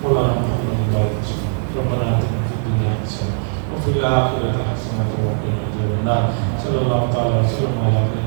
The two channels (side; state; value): left; silent; digital silence